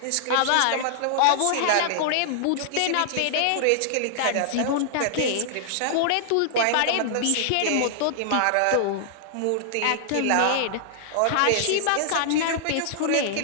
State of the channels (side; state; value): both; different; correlation -0.01